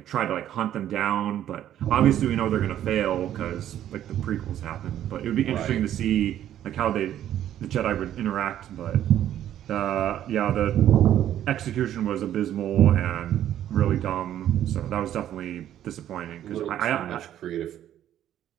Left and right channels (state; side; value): quieter; left; 11.4 dB